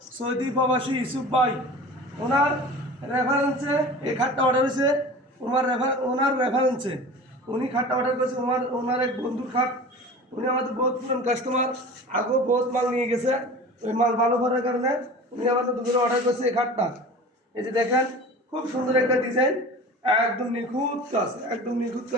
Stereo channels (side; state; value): both; normal; correlation 0.37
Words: সৌদি প্রবাসী ইউসুফ ভাই। ওনার রেফারেন্সে এই খাটটা অর্ডার হয়েছে। ওনার রেফারেন্সে উনি খাটটা অর্ডার করেছে। ওনার এক বন্ধুর খাট। উনি আমাদের বহুত পুরান কাস্টমার, আগেও বহুত মাল নিয়ে গেছে। ওই মাল ভালো করার কারণে উনি আমাদের দুপুরে অর্ডার করেছে এই খাটটা। এই যে দেখেন, খুব সুন্দর একটা ডিজাইন, একদম নিখুঁত কাজ, একদম নিখুঁত